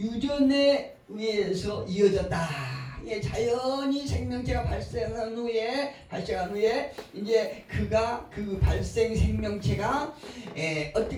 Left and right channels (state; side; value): identical; both; correlation 1.00